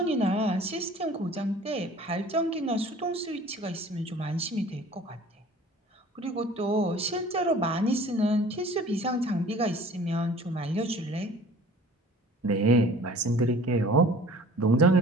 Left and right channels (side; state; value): both; normal; correlation 0.47